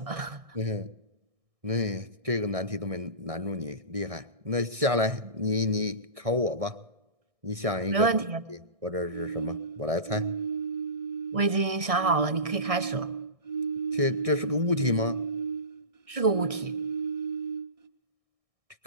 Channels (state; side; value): late; left; 1.6 ms